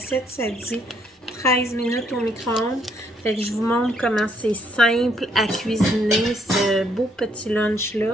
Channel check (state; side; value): normal; both; correlation 0.70